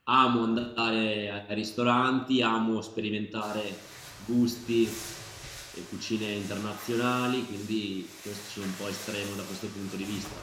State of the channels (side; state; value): both; identical; correlation 1.00